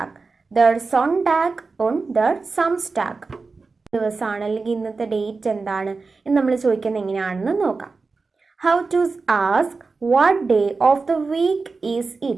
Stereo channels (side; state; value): left; quieter; 4.2 dB